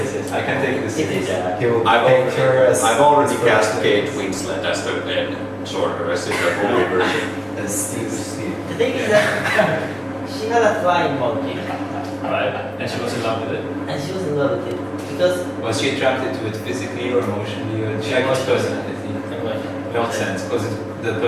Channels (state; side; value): identical; both; correlation 1.00